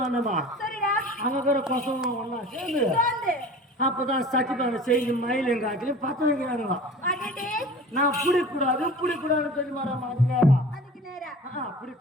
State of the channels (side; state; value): both; normal; correlation 0.40